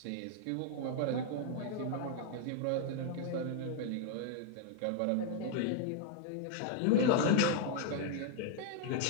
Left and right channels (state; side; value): different; both; correlation 0.00